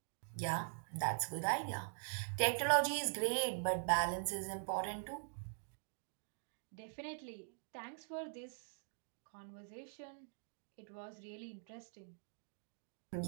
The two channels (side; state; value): left; silent; digital silence